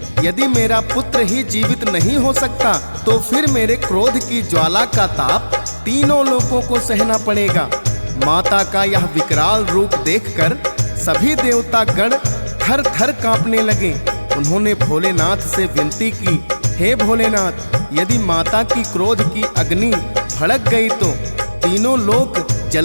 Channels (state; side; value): inverted; both; correlation -1.00